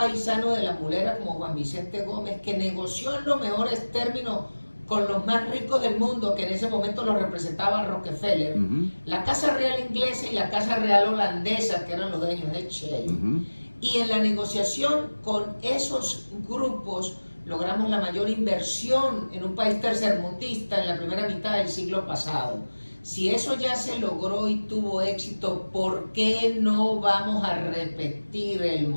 de La Mulera como Juan Vicente Gómez, que negoció en los mejores términos con los más ricos del mundo, que en ese momento los representaba Rockefeller, la Casa Real inglesa y la Casa Real holandesa, que eran los dueños de Shell. Y en la negociación con esos grupos logramos la mayor inversión en un país tercermundista en la primera mitad del siglo pasado. Si eso ya se logró y tuvo éxito, ¿por qué no vamos a repetir el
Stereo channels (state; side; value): inverted; both; correlation -1.00